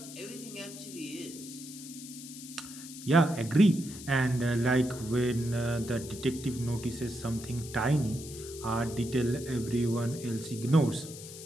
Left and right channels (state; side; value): noise; left; hiss, 13 dB below the sound